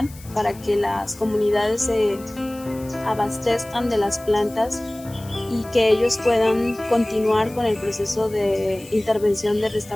para que las comunidades se abastezcan de las plantas y que ellos puedan continuar con el proceso de intervención de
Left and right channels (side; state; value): left; noise; hiss, 21 dB below the sound